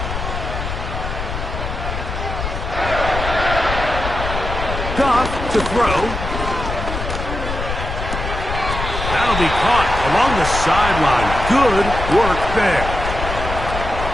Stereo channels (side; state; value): left; noise; rumble, 5 dB below the sound